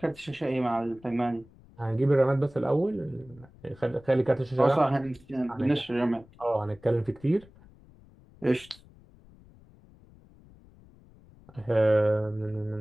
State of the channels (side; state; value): left; noise; rumble, 25 dB below the sound